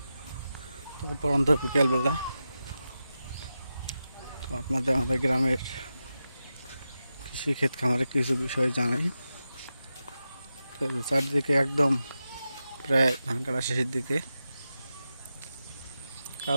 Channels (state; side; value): inverted; both; correlation -0.91